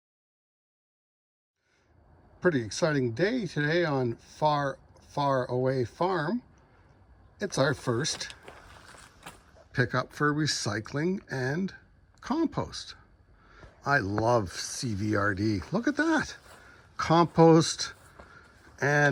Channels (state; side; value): identical; both; correlation 1.00